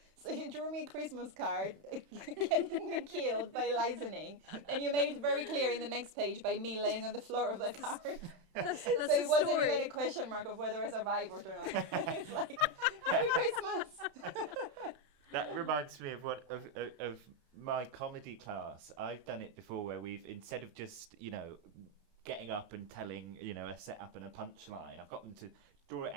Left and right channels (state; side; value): late; left; 31 ms